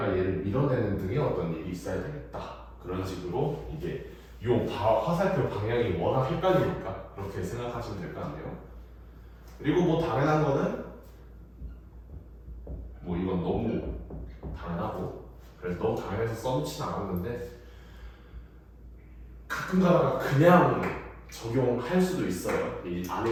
얘를 밀어내는 등의 어떤 일이 있어야 되겠다. 그런 식으로 이게 요 화살표 방향이 워낙 헷갈리니까 그렇게 생각하시면 될 것 같네요. 그리고 뭐 당연한 거는 뭐 이건 너무 당연하고 그래서 너무 당연해서 써놓진 않았는데 가끔 가다가 그냥 적용할 수도 있어요. 이 안에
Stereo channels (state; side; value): identical; both; correlation 1.00